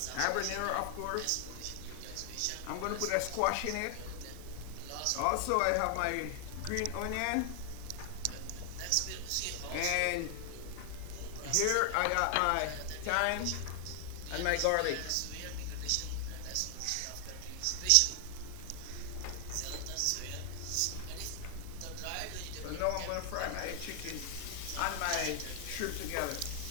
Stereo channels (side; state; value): both; different; correlation 0.00